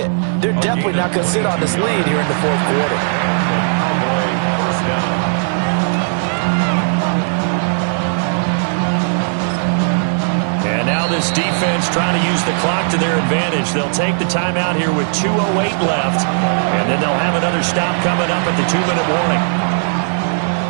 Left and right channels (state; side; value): silent; left; digital silence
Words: They're definitely not going to sit on this lead here in the fourth quarter. And now this defense trying to use the clock to their advantage. They'll take the timeout here with 2:08 left, and then they'll have another stop coming up at the 2-minute warning.